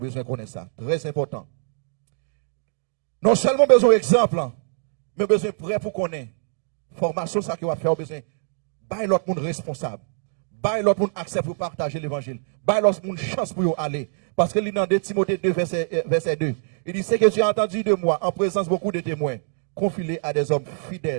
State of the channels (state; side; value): silent; left; digital silence